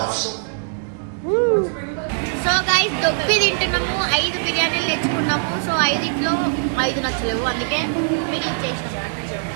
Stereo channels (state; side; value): silent; left; digital silence